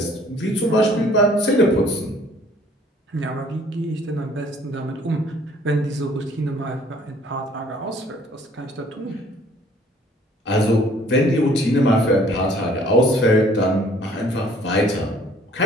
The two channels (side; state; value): both; normal; correlation 0.57